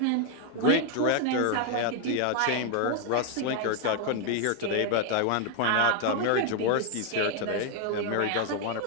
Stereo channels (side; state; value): both; different; correlation 0.00